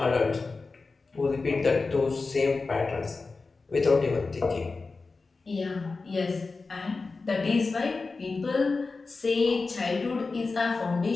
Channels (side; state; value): right; quieter; 4.0 dB